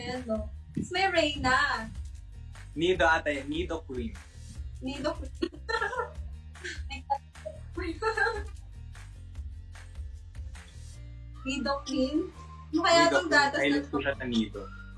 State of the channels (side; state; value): both; identical; correlation 1.00